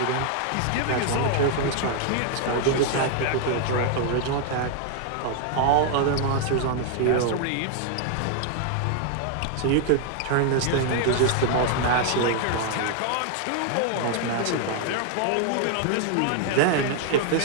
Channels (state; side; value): different; both; correlation 0.00